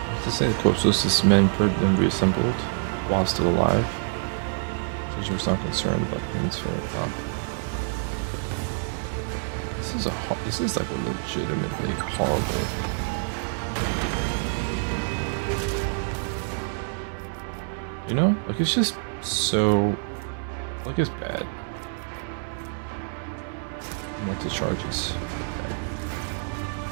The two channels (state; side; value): silent; left; 60 dB below the other